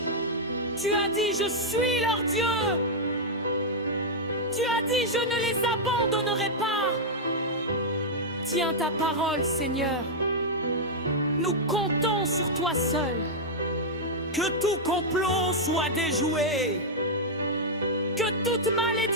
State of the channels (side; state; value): both; normal; correlation -0.06